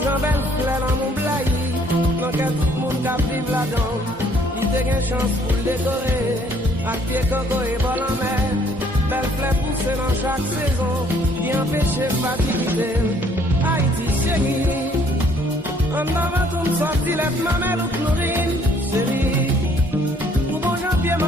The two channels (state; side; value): normal; both; correlation 0.62